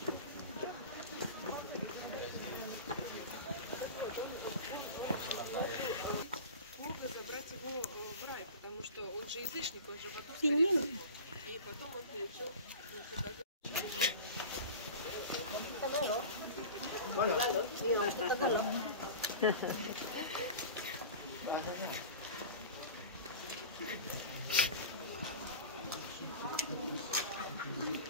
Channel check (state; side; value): inverted; both; correlation -0.33